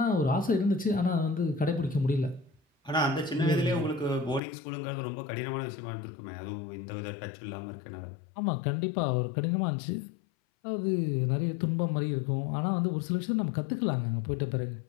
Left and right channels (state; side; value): drops out; right; at 4.4 s